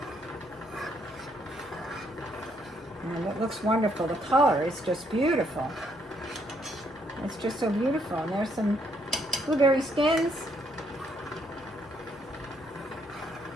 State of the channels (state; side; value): normal; both; correlation 0.71